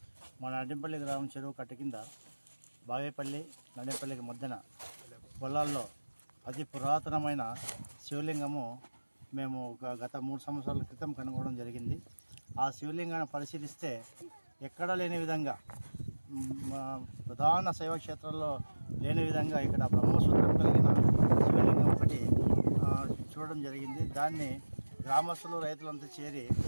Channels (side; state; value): both; inverted; correlation -1.00